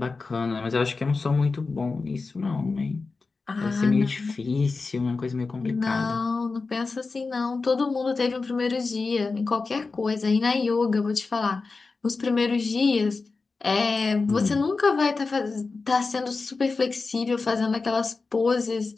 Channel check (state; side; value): quieter; right; 4.1 dB